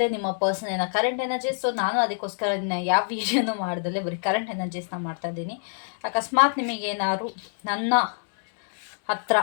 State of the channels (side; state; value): right; silent; digital silence